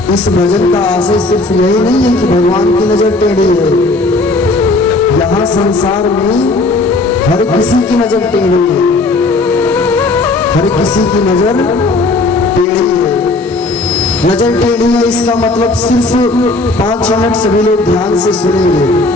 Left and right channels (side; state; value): right; quieter; 3.2 dB